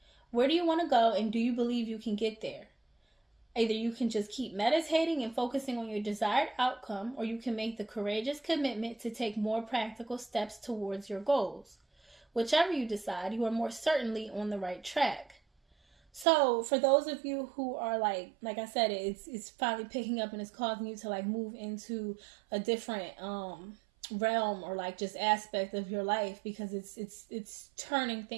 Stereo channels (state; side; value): drops out; left; at 16.2 s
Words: Where do you want to go, and do you believe you can get there? Either you can just keep meditating and focusing on your desired outcome, or you can make the courageous commitment to take more practical steps towards your goals. Whichever you decide, you are more certainly on the right track. So for those of you who are like I said, it's finally picking up and it's causing you to like move into a different realm, or like just aspect of your life, because it's turning